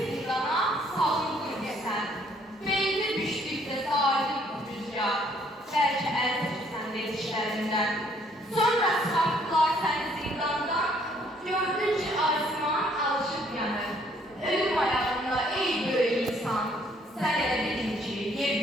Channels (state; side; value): normal; both; correlation 0.65